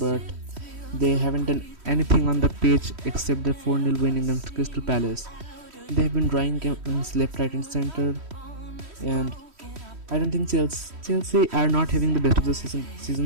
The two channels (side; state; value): left; late; 3.1 ms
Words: they haven't done anything on the pitch except the 4-0 win against Crystal Palace. They have been drawing games left, right and center, and I don't think Chelsea are not having the best of the